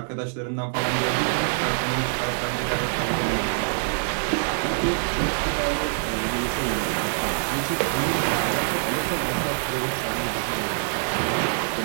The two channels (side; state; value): left; silent; 62 dB below the other